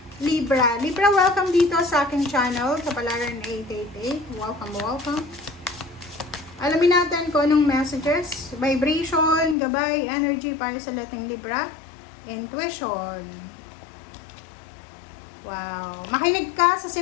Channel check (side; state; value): right; drops out; at 9.6 s